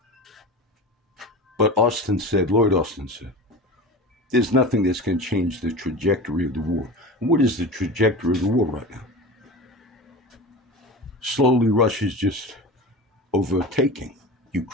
But Lloyd Austin said, there's nothing that's going to change the trajectory of the war. And what is the trajectory of the war right now? Slowly, Russia's just overtaking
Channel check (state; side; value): normal; both; correlation 0.31